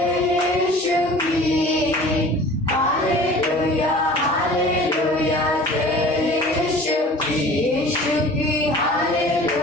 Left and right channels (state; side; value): normal; both; correlation 0.44